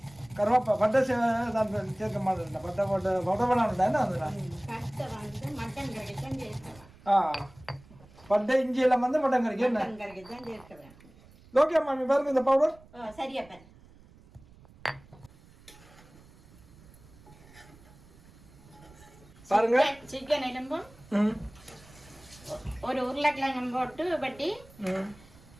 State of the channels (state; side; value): noise; right; rumble, 24 dB below the sound